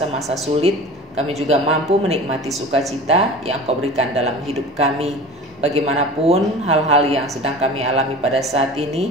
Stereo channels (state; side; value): normal; both; correlation 0.37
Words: sulit. Kami juga mampu menikmati sukacita yang Kau berikan dalam hidup kami. Bagaimanapun hal-hal yang sedang kami alami pada saat ini,